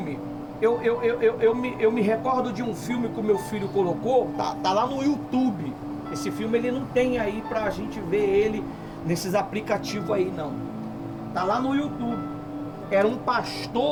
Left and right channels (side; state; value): both; identical; correlation 1.00